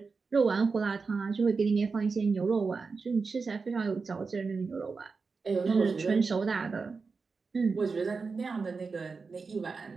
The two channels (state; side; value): quieter; left; 4.6 dB